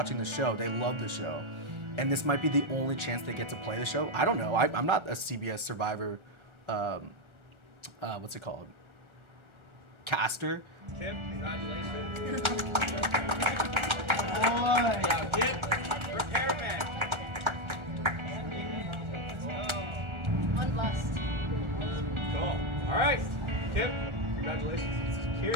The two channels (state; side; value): late; left; 1.4 ms